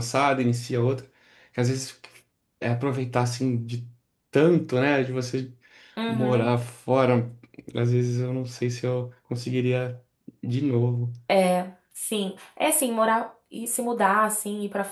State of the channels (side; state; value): both; identical; correlation 1.00